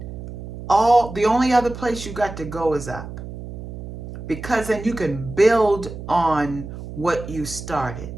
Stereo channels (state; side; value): noise; right; hum, 11 dB below the sound